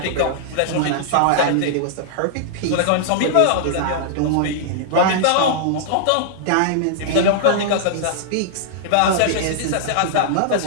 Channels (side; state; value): both; different; correlation -0.01